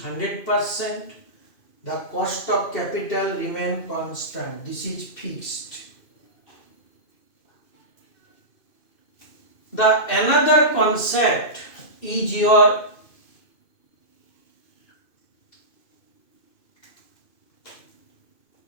the cost of capital remains constant. This is fixed. The another concept is your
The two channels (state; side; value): late; right; 2.5 ms